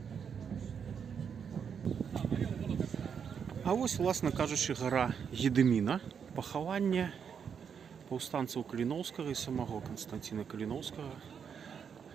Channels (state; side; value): quieter; left; 7.1 dB